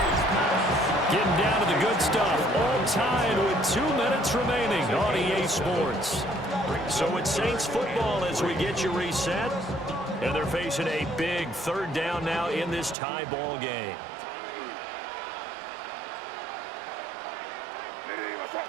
Getting down to the good stuff. All tied with 2 minutes remaining on EA Sports. So it's Saints football as we get you reset. And they're facing a big third down now in this tie ball game.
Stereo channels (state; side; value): drops out; left; at 13.0 s